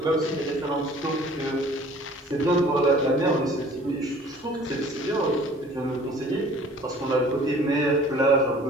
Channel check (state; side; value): normal; both; correlation 0.50